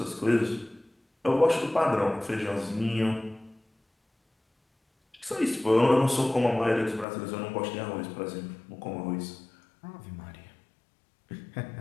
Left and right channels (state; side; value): drops out; right; at 7.1 s